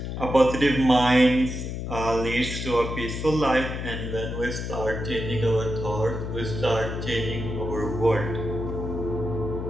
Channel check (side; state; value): left; noise; hum, 5 dB below the sound